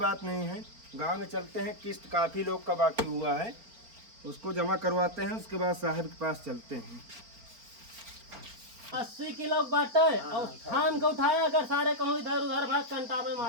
नहीं है गांव में चलते हैं किस्त काफी लोग का बाकी हुआ है उसको जमा करवाते हैं उसके बाद साहब के पास चलते हैं। 80 किलो बाटे और थाम के उठाया अगर सारे कहूँ इधर उधर भाग कंटा में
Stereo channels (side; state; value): left; late; 4.5 ms